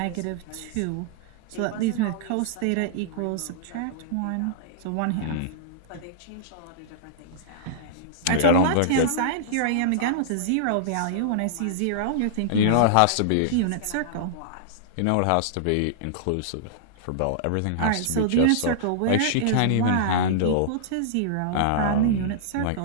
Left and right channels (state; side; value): different; both; correlation -0.02